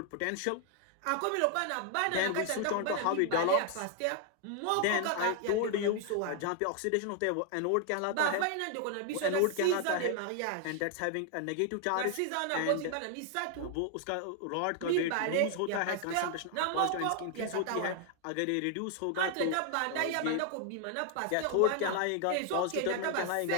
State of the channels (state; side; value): different; both; correlation 0.00